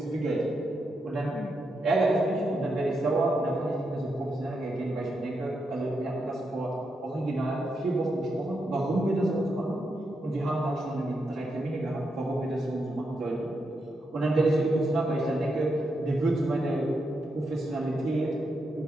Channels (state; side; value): normal; both; correlation 0.83